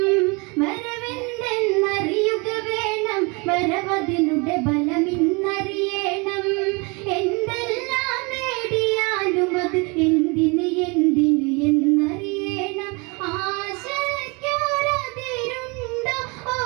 വരവെന്തെന്നറിയുക വേണം വരവതിനുടെ ബലമിന്നറിയണം എന്തെല്ലാം നേടിയാലും അത് എന്തിന് എന്തിന് എന്നറിയണം ആശയ്ക്കൊരതിരുണ്ടോ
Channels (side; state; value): left; quieter; 29.3 dB